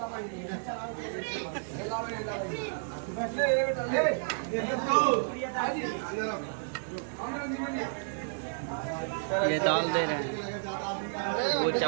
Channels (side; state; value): left; silent; digital silence